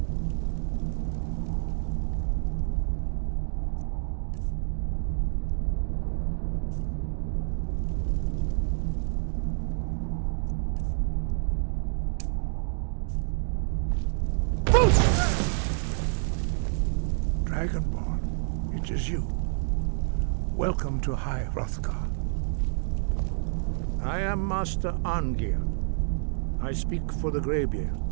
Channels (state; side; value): silent; left; digital silence